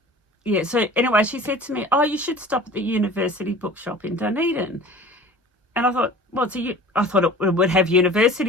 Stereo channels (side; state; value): both; normal; correlation 0.42